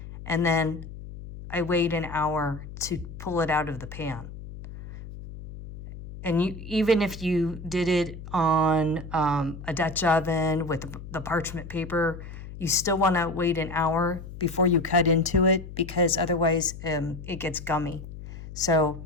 And then I wait an hour to pull it out of the pan. And even if you did it on a Dutch oven with the parchment paper, you still want to wait an hour before you cut into it, because otherwise it gets gummy. So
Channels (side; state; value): left; noise; hum, 12 dB below the sound